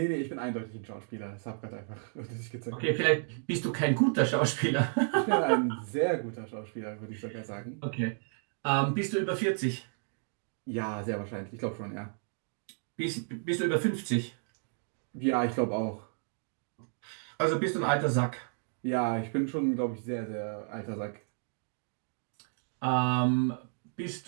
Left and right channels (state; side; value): silent; left; 56 dB below the other